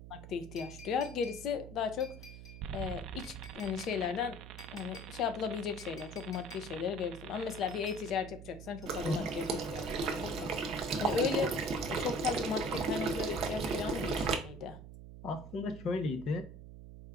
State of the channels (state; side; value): noise; right; hum, 13 dB below the sound